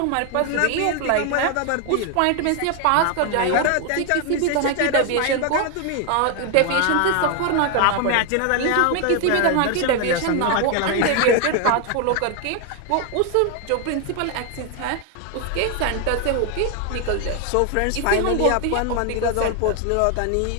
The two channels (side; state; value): both; different; correlation 0.01